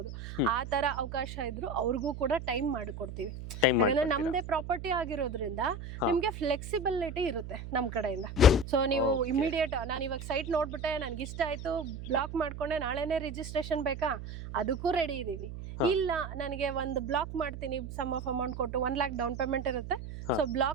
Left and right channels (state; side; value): noise; right; hum, 9 dB below the sound